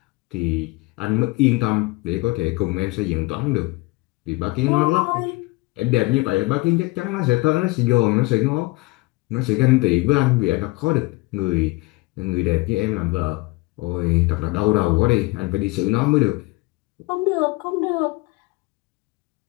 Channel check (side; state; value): right; quieter; 23.1 dB